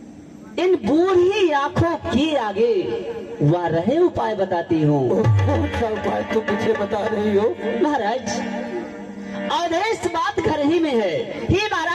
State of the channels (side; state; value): both; identical; correlation 1.00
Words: इन बूढ़ी आंखों के आगे वह रहे उपाय बताती हूँ। कौन सा उपाय तुम मुझे बता रही हो? महाराज, आदेश बात घर ही में है। ही